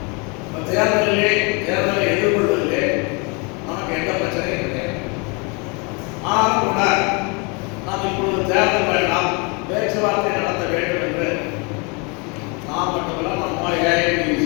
தேர்தலை எதிர்கொள்வதிலே நமக்கு எந்த பிரச்சனையும் கிடையாது. ஆனாலும் கூட நாம் இப்பொழுது தேர்தல் வேண்டாம், பேச்சுவார்த்தை நடத்த வேண்டும் என்று நாம் மட்டுமல்ல நம்ம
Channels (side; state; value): right; quieter; 31.5 dB